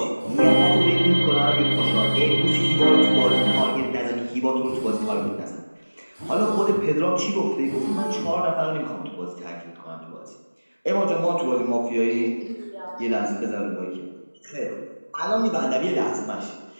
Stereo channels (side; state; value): both; inverted; correlation -1.00